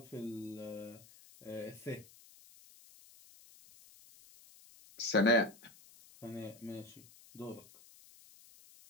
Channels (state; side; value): noise; left; hiss, 23 dB below the sound